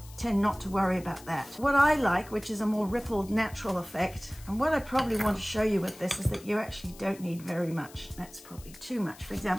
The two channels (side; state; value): left; noise; hiss, 20 dB below the sound